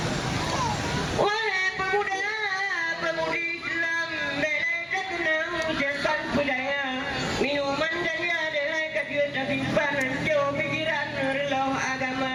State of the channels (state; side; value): identical; both; correlation 1.00